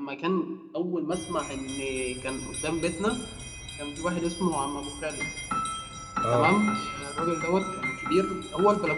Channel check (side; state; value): both; identical; correlation 1.00